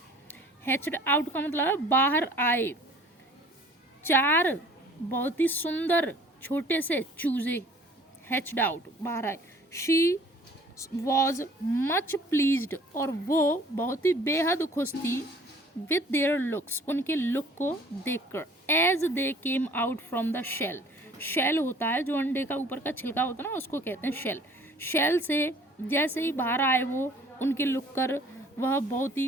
Hatched out का मतलब है बाहर आए, 4 बहुत ही सुंदर छोटे से चूजे हैच्ड आउट, बाहर आए। शी वॉज मच प्लीज्ड, और वो बहुत ही बेहद खुश थी। विद देयर लुक्स, उनके लुक को देखकर। As they came out from the shell, shell होता है जो अंडे का ऊपर का छिलका होता है ना, उसको कहते हैं शेल। शेल से जैसे ही बाहर आए वो, उनके लुक कर वह बहुत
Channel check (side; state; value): both; normal; correlation 0.52